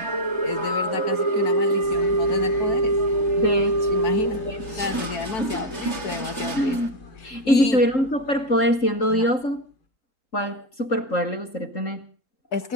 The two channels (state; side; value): late; right; 3.3 ms